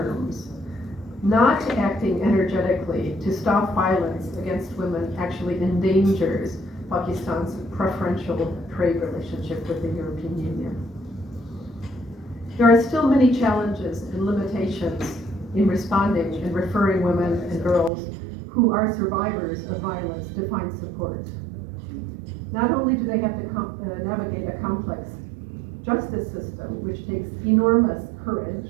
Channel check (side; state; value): left; drops out; at 17.9 s